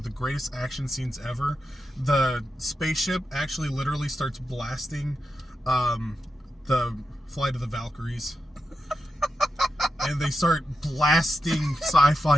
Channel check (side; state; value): both; normal; correlation 0.89